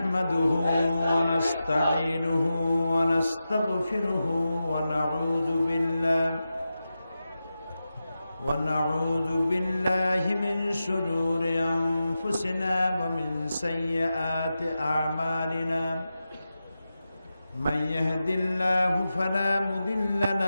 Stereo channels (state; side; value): inverted; both; correlation -0.91